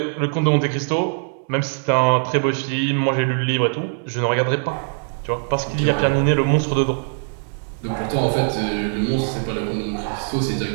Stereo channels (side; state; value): left; silent; 65 dB below the other